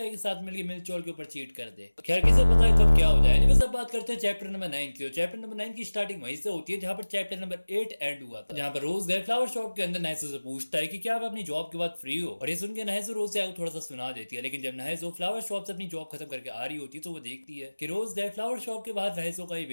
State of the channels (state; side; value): inverted; both; correlation -1.00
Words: साथ मिलकर मिल्चॉन के ऊपर चीट कर दे। खैर किसे पता है कब क्या हो जाए। बस अब बात करते हैं चैप्टर नंबर 9 की। चैप्टर नंबर 9 की स्टार्टिंग वहीं से होती है जहां पर चैप्टर नंबर 8 एंड हुआ था, जहां पर रोज गए फ्लावर शॉप के अंदर नहेजो से पूछता है कि क्या आप अपनी जॉब के बाद फ्री हो। और ये सुन के नहेजो रोज से थोड़ा सा सुना देती है, लेकिन जब नहेजो फ्लावर शॉप से अपनी जॉब खत्म करके आ रही होती है तो वो देखती है कि रोज गए फ्लावर शॉप के बाहर नहेजो का ही